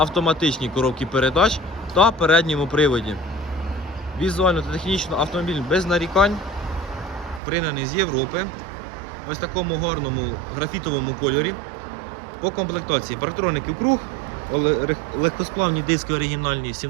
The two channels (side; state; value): left; drops out; at 7.4 s